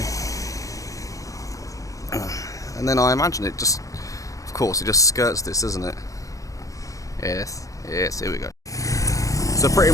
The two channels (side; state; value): right; late; 0.16 ms